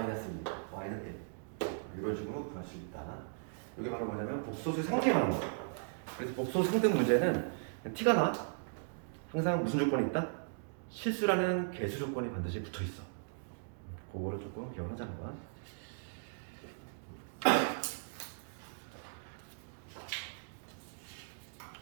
2, y는 1. 이런 식으로 구할 수 있다. 이게 바로 뭐냐면 복소수의 상등이 말하는 거야. 그래서 복소수 상등 문제는 티가 나. 항상 무슨 조건이 있다? 실수라는 개수 조건이 반드시 붙어 있어. 그거를 조금 기억하자는 거야.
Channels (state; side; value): silent; left; digital silence